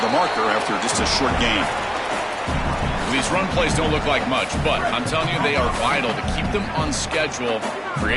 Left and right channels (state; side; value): identical; both; correlation 1.00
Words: the marker after just a short gain. These run plays don't look like much, but I'm telling you, they are vital to keep them on schedule,